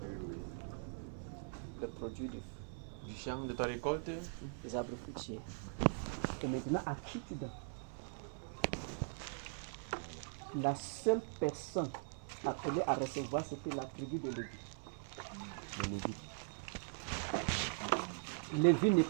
Le produit du champ, de ta récolte, les arbres fruitiers. Et maintenant, à qui tu donnes? La seule personne appelée à recevoir, c'était la tribu de Lévi. Lévi n'est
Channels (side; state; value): left; silent; 50 dB below the other